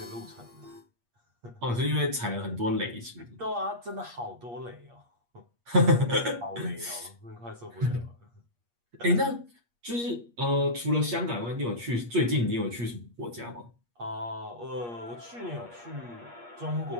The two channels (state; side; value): late; left; 8.4 ms